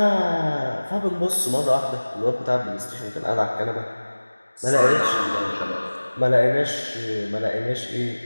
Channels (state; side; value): inverted; both; correlation -1.00